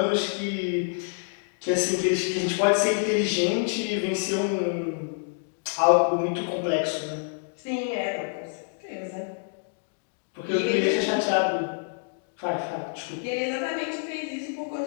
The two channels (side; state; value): right; silent; digital silence